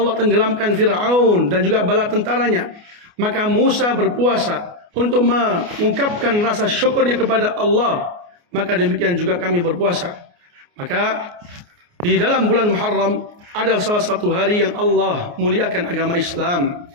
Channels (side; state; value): left; late; 29 ms